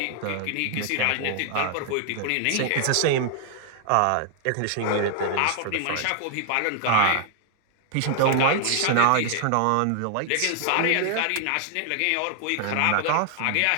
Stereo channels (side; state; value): both; different; correlation 0.00